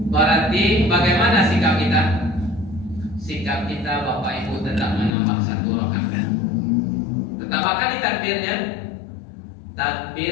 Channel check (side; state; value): right; drops out; at 5.1 s